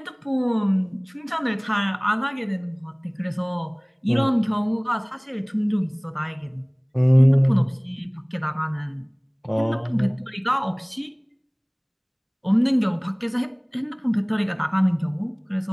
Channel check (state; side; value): identical; both; correlation 1.00